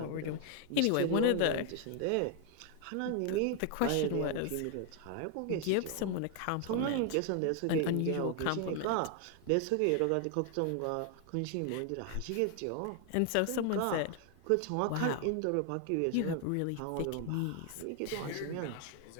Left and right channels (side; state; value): both; different; correlation 0.00